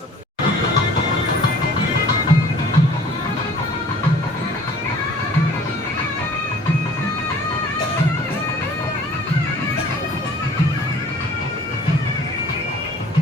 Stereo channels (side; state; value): both; normal; correlation 0.51